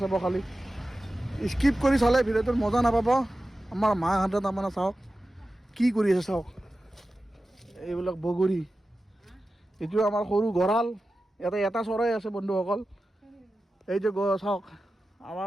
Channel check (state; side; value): normal; both; correlation 0.94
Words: খালি স্কিপ কৰি চালে ভিডিঅ'টোৰ মজা নাপাব। আমাৰ মাহঁতে তাৰমানে চাওক কি কৰি আছে, চাওক এইবিলাক বগৰী। এইটো আমাৰ সৰু গঁৰাল, ইয়াতে এটা চৰাই আছে বন্ধুসকল। এই যে চাওক